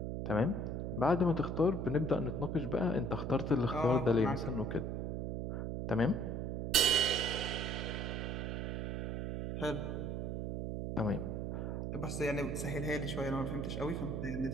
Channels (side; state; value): right; noise; hum, 2 dB below the sound